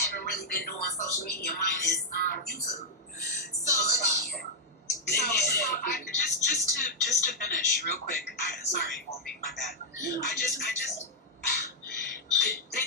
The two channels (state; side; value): normal; both; correlation -0.02